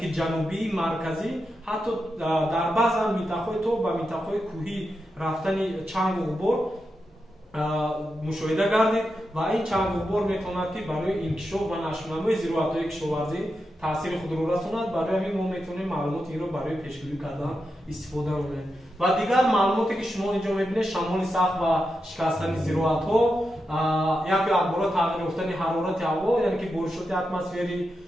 ҷанубии марказӣ ҳатто дар баъзан минтақаҳои то ба минтақаҳои кӯҳӣ рафтани чангу ғубор мушоҳида гардид ва ин чангу ғубор метавонад ки барои инкишоф ва нашрнамои зироатҳои кишоварзӣ таъсири худро расонад. барои ҳамин мо метавонем маълумоти инро барои пешгӯӣ кардан истифода намоем. ва дигар маълумоте ки шумо инҷо мебинед шамоли сахт ва шикастани зироатҳо, як акбора тағйир ёфтани ҳарорати ҳаво, яъне ки боришоти атмосферӣ,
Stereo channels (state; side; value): normal; both; correlation 0.88